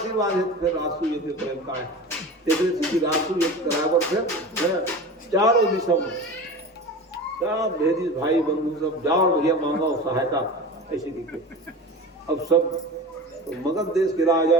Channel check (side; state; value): both; normal; correlation 0.32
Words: है। फिर राजसू यज्ञ प्रेम का है राजसू यज्ञ करावर फिर चारों दिशा में सब भेदी भाई बंधु सब जाओ भैया मांगो सहायता ऐसे दिखे। अब सब तो मगध देश के राजा